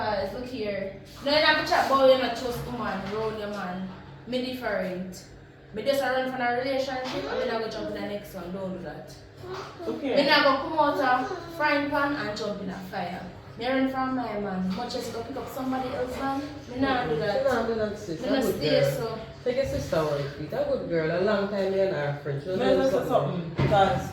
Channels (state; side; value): identical; both; correlation 1.00